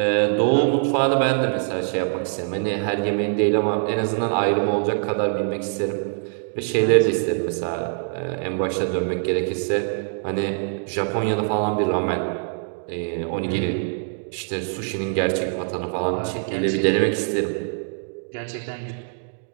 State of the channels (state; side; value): silent; left; digital silence